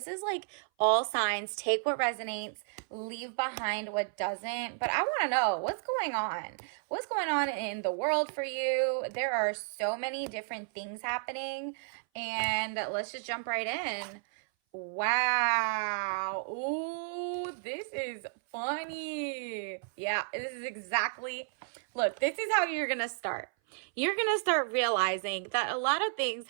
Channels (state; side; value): silent; left; 56 dB below the other